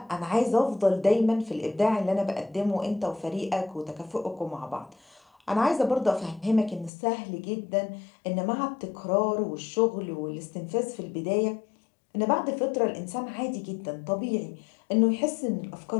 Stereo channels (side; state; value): right; drops out; at 6.9 s